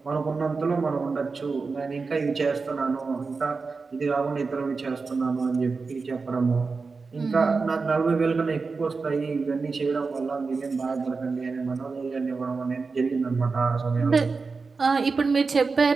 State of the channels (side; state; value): left; quieter; 4.4 dB